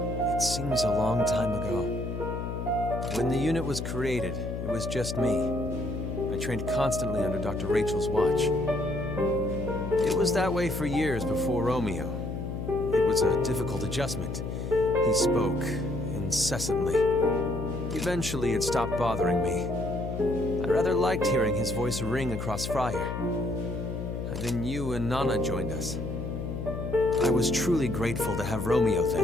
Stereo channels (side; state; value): left; noise; hum, 5 dB below the sound